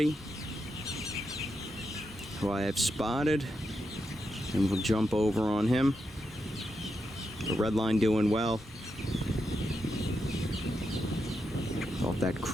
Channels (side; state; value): both; normal; correlation 0.85